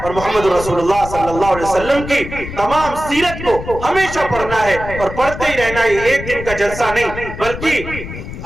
اور محمد رسول اللہ صلی اللہ علیہ وسلم کی تمام سیرت کو ہمیشہ پڑھنا ہے اور پڑھتے ہی رہنا ہے، ایک دن کا جلسہ نہیں، بلکہ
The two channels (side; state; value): left; noise; rumble, 9 dB below the sound